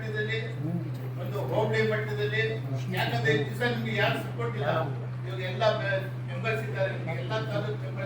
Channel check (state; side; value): identical; both; correlation 1.00